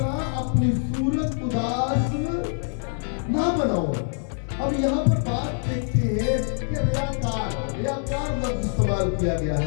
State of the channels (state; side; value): silent; right; 62 dB below the other